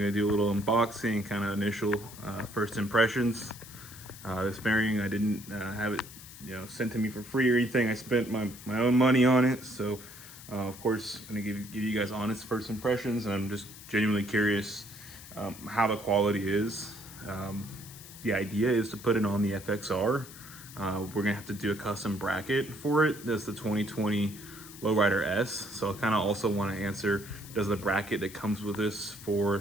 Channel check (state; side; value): noise; left; hiss, 16 dB below the sound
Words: do a little unboxing, kind of initial first impressions. This fairing, I didn't have it, sent to me for free or anything. I spent my own money on it, so of course, I'm gonna give you guys honest first impressions, and I'm just genuinely curious how the quality is. The idea is to put it on the FXR. We're gonna have to do a custom bracket for it. That's the 2020 Lowrider S. So I kind of also want to answer, does the bracket that comes with this